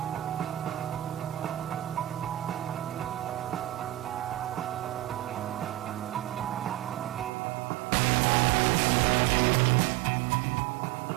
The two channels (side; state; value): left; drops out; at 7.3 s